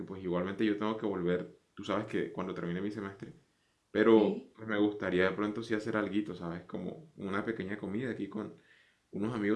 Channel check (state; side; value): identical; both; correlation 1.00